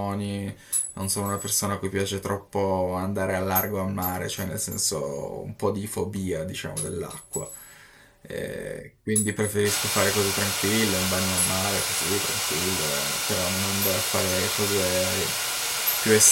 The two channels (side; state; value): both; identical; correlation 1.00